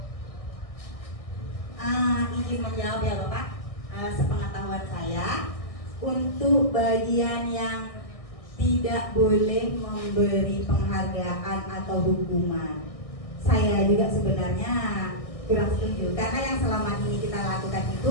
izin menjawab ya Bapak. Sepengetahuan saya, untuk bagian yang tidak boleh memberi penghargaan atau hukuman, saya juga sebenarnya kurang setuju, karena yang selama ini kita lakukan itu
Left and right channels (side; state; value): right; late; 1.6 ms